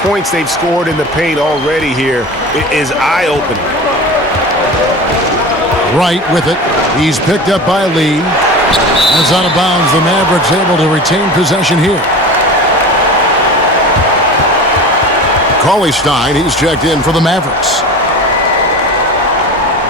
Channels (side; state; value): both; normal; correlation 0.33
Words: they've scored in the paint already here is eye-opening. Wright with it. He's picked up by Lee. It's out of bounds. The Mavericks able to retain possession here. Cauley-Stein, he's checked in for the Mavericks.